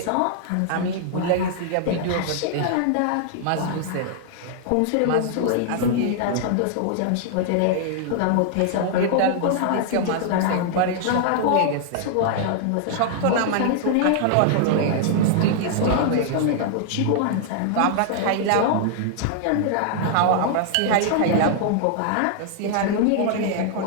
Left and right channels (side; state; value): both; different; correlation -0.01